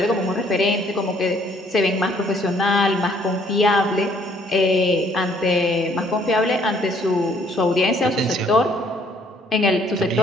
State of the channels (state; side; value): normal; both; correlation 0.63